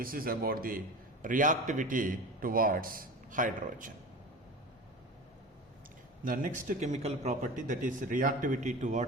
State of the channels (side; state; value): both; normal; correlation 0.32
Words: is about the reactivity towards hydrogen. The next chemical property, that is reactivity